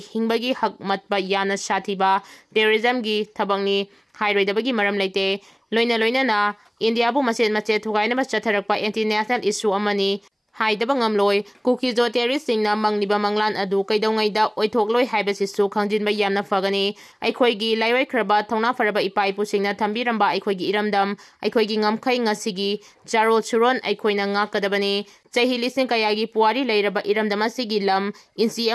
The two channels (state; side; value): identical; both; correlation 1.00